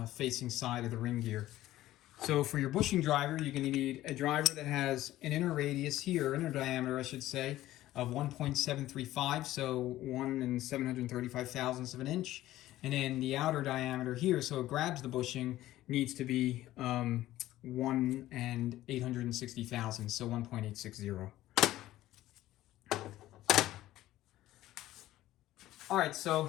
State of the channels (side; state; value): right; quieter; 15.0 dB